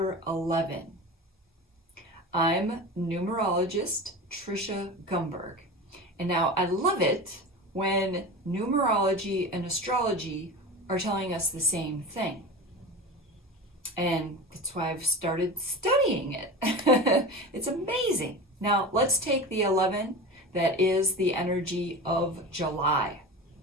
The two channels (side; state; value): both; normal; correlation 0.29